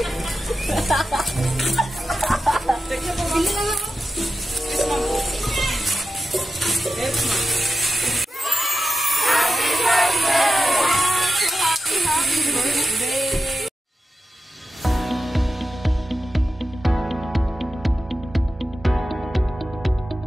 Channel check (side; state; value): both; normal; correlation 0.91